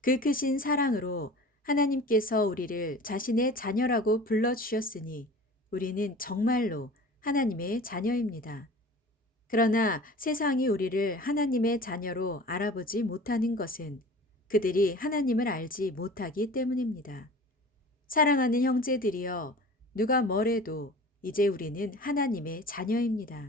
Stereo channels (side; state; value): both; normal; correlation 0.40